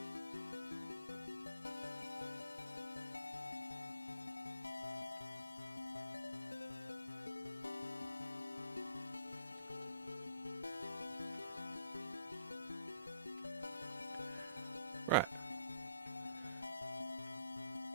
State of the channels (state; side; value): inverted; both; correlation -0.63